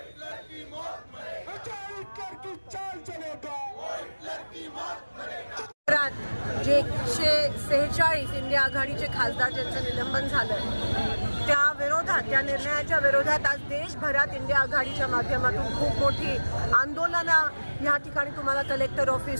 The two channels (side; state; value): both; inverted; correlation -1.00